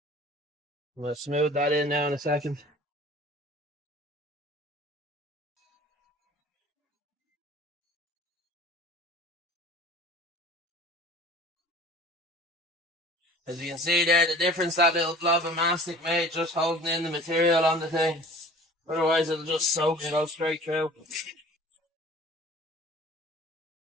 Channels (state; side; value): normal; both; correlation 0.45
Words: We'll smooth that in now in a second. As you can see there, the difference that little blob of mastic made just holding in the material on the thing. Otherwise it'll just soak and go straight through.